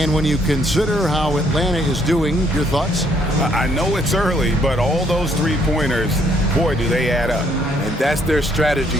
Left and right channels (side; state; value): both; normal; correlation 0.68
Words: when you consider how Atlanta is doing, your thoughts? I know it's early, but all those three-pointers, boy, do they add up. And that's their strategy.